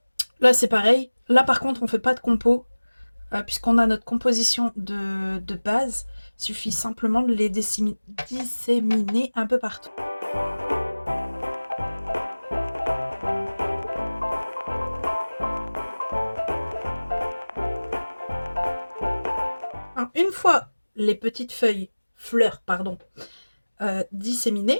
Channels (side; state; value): both; inverted; correlation -1.00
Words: Là, c'est pareil. Là, par contre, on ne fait pas de compo, puisqu'on a notre composition de base. Il suffit simplement de les disséminer un peu partout. Alors, une fois les petites fleurs,